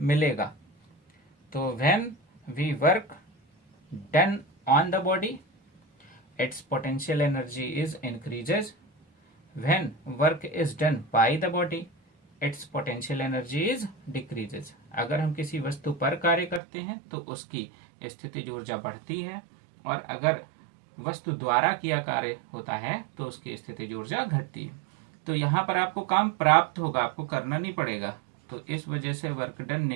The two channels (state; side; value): drops out; left; at 16.6 s